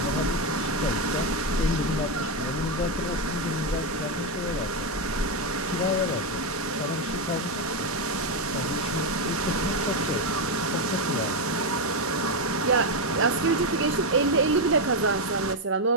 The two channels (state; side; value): normal; both; correlation 0.06